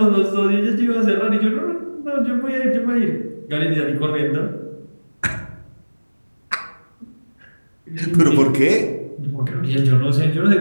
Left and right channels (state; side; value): inverted; both; correlation -1.00